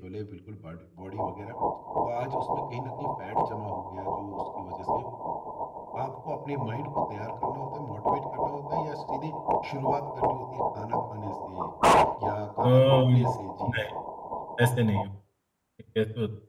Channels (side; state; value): both; identical; correlation 1.00